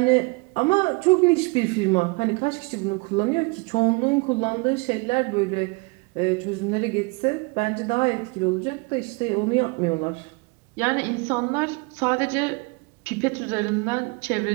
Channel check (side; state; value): left; quieter; 28.2 dB